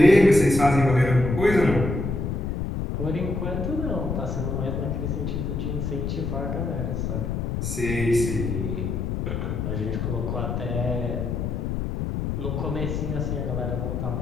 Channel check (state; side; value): noise; left; rumble, 2 dB below the sound